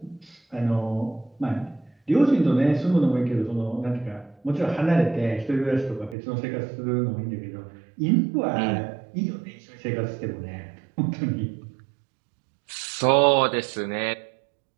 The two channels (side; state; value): left; drops out; at 6.2 s